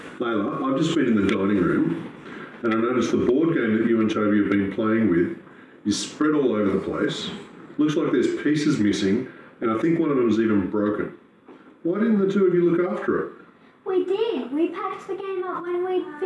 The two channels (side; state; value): both; identical; correlation 1.00